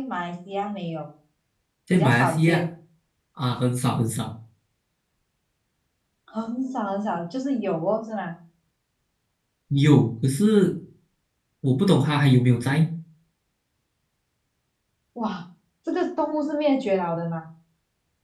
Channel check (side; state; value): both; identical; correlation 1.00